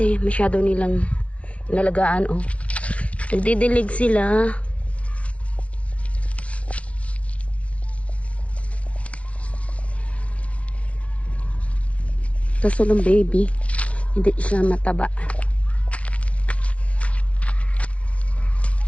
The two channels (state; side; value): late; right; 0.063 ms